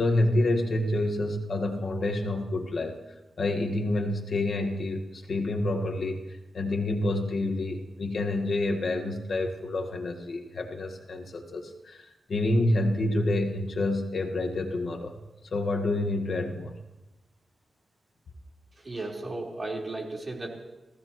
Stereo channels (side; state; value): both; normal; correlation 0.85